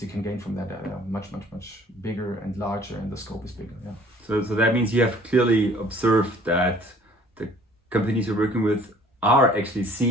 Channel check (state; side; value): normal; both; correlation 0.54